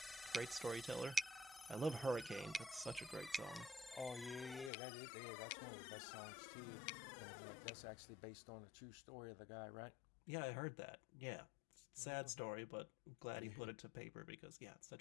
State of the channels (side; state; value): right; drops out; at 4.7 s